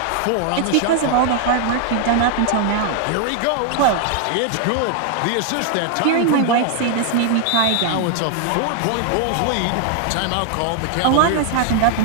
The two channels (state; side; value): different; both; correlation 0.00